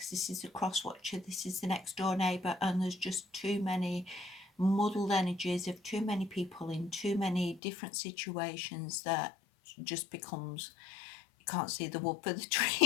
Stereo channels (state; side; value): drops out; right; at 7.6 s